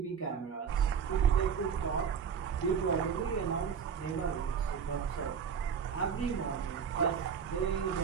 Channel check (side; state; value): left; quieter; 6.9 dB